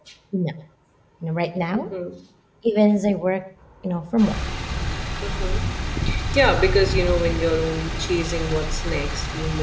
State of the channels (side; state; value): both; identical; correlation 1.00